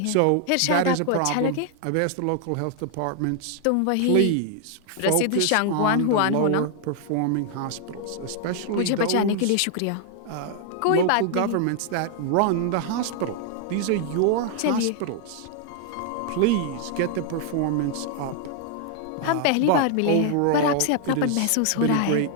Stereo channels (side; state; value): both; different; correlation 0.00